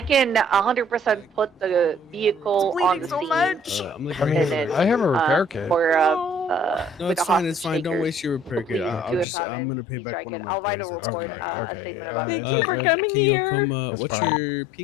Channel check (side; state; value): right; drops out; at 9.2 s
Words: can 100% put the vehicle on the scene. I mean, I have a repair kit. For no, it's fine. It's fine. Don't waste your repair kit. I'm gonna pay back. I'll write a report, a statement about it. Thank you for coming here. What's your